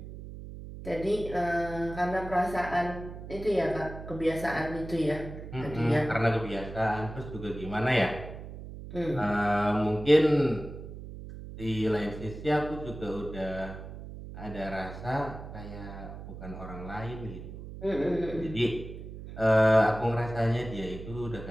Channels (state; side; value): noise; right; hum, 11 dB below the sound